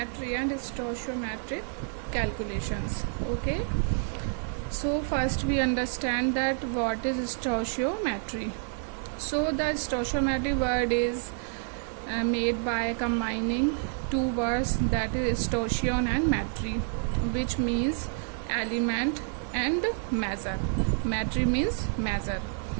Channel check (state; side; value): silent; left; 59 dB below the other